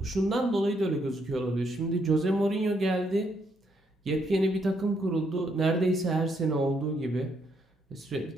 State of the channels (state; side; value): normal; both; correlation 0.74